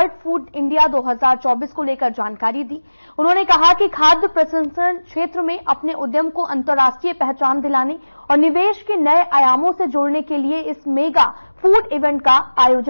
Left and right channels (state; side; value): inverted; both; correlation -1.00